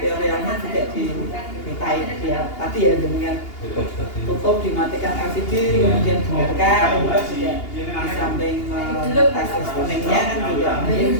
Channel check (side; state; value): right; late; 2.8 ms